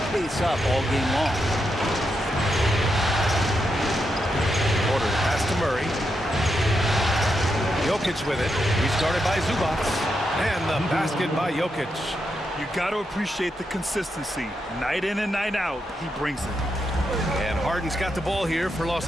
pace up all game long? Porter pass to Murray. Jokic with it. Restarted by Zubac. And the basket by Jokic. You got to appreciate the consistency. Night in and night out, he brings it. And Harden's got the ball here for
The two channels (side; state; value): both; normal; correlation 0.84